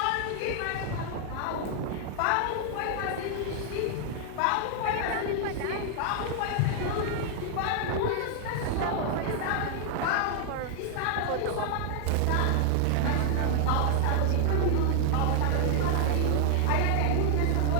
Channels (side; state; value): both; different; correlation 0.00